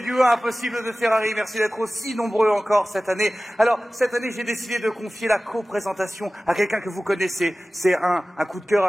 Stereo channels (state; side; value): normal; both; correlation 0.97